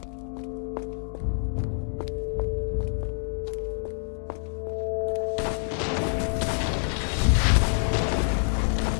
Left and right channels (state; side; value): silent; right; 57 dB below the other